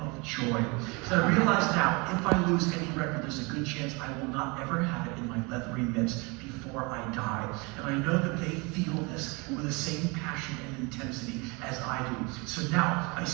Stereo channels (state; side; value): quieter; left; 28.2 dB